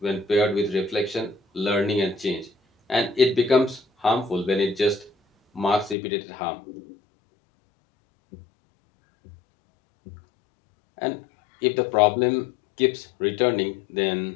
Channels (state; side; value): drops out; right; at 6.0 s